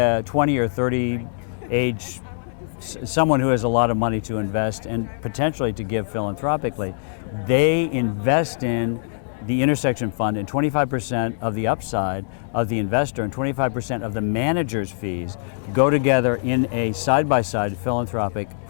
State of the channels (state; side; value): silent; right; digital silence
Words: 20 or 30 age, someone who has a lot of money to invest and potentially to give philanthropically, they invest in the Intersection Fund, and 25% of the upside of the investor and 25% of the manager's fees go together in a side-by-side philanthropic